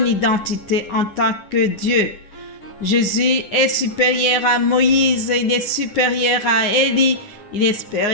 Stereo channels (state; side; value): late; right; 10 ms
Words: identité en tant que Dieu. Jésus est supérieur à Moïse, il est supérieur à Élie, il est